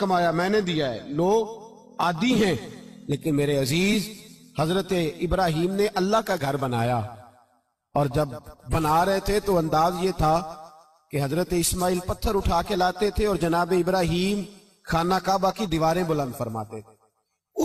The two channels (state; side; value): identical; both; correlation 1.00